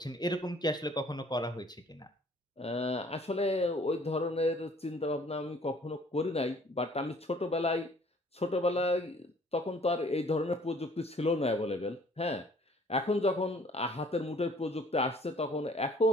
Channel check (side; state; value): both; normal; correlation 0.56